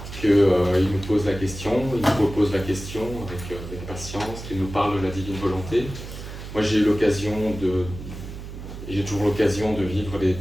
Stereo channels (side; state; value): right; noise; hum, 11 dB below the sound